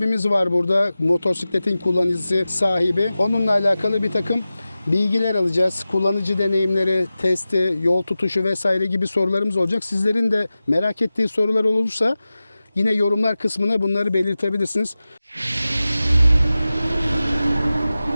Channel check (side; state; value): both; inverted; correlation -0.95